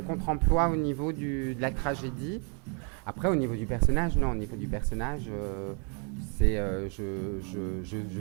contre-emploi au niveau de la tragédie. Après au niveau du personnage, non. Au niveau du personnage, c'est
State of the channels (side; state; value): left; quieter; 37.8 dB